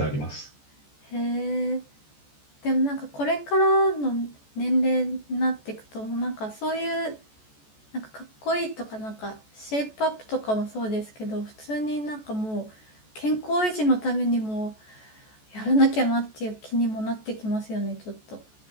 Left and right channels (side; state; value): right; late; 14 ms